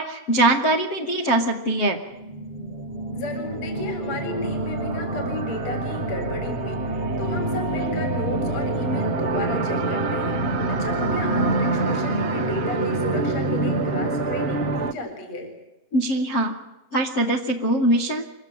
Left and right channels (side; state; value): right; late; 7.6 ms